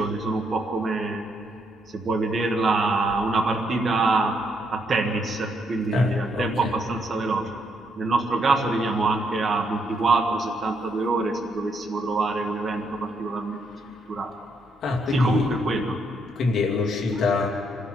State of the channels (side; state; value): both; normal; correlation 0.75